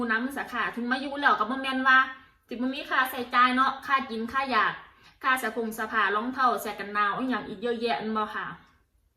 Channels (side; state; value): both; identical; correlation 1.00